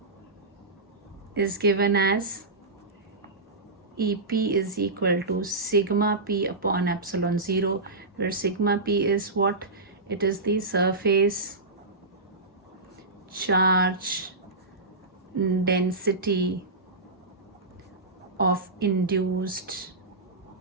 is given as EP is equal to sigma P upon epsilon 0, where sigma P is what? It is the surface charge density of induced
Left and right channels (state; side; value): quieter; left; 3.1 dB